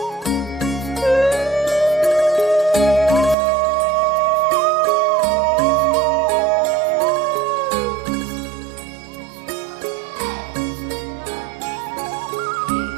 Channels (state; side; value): drops out; left; at 3.4 s